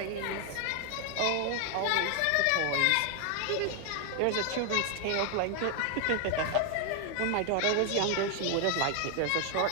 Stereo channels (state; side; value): different; both; correlation 0.00